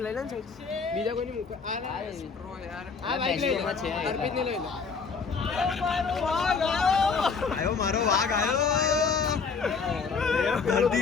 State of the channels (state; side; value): quieter; right; 5.2 dB